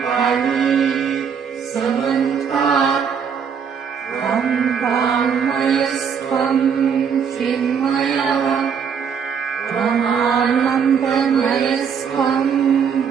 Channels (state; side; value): quieter; left; 7.0 dB